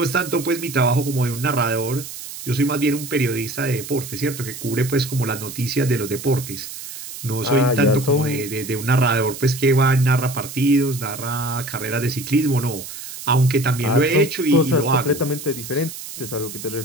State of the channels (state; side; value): noise; right; hiss, 11 dB below the sound